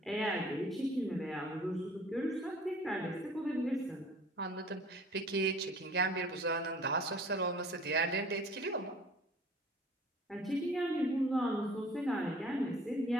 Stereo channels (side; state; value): both; normal; correlation 0.49